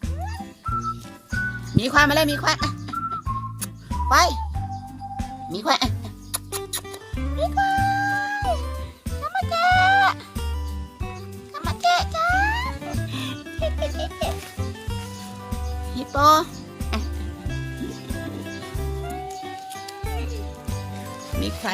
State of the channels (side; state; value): both; identical; correlation 1.00